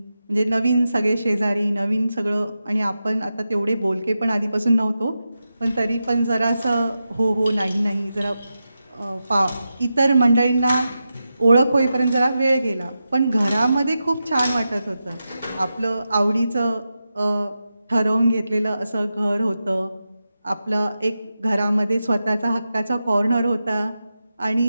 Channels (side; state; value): both; inverted; correlation -0.90